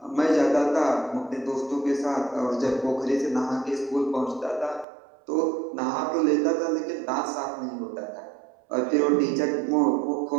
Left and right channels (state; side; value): drops out; left; at 4.9 s